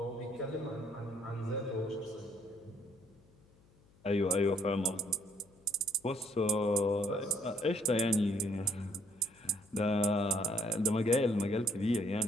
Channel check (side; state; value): left; noise; hum, 29 dB below the sound